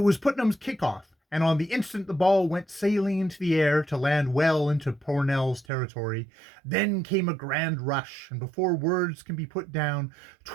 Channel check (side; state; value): left; drops out; at 5.7 s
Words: Putnam's kickoff, and on the instant the ball went sailing into the air to land well into Pornell's territory. Then came a grand rush, and before words can be put down,